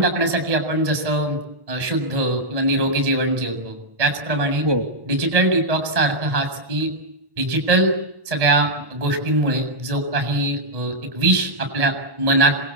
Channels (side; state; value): left; late; 1.1 ms